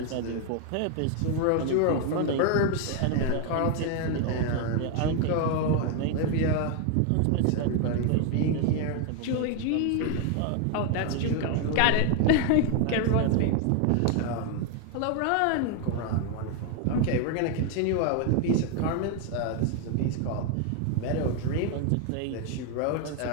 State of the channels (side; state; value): both; different; correlation 0.01